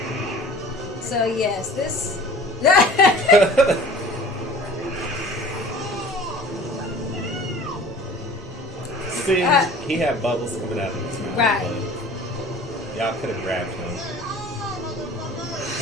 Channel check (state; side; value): normal; both; correlation 0.45